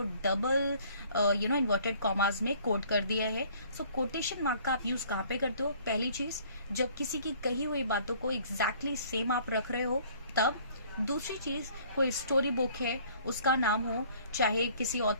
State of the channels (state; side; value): inverted; both; correlation -0.56